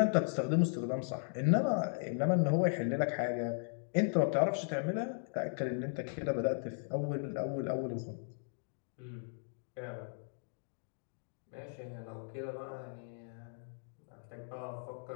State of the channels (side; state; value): right; silent; digital silence